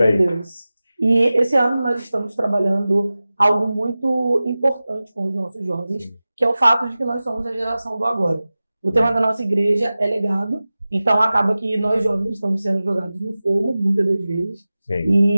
aí. Meu Deus. E esse ano nós estamos trabalhando algo muito importante com os nossos jovens, que é o fato de que nós somos a geração do agora. O tema da nossa igreja é legado, então acaba que nós jovens estamos sendo jogados no fogo, muitas das vezes. Sim.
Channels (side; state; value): both; inverted; correlation -0.96